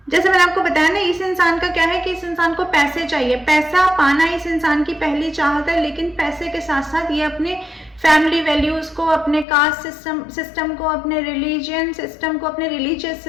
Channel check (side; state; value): right; drops out; at 9.5 s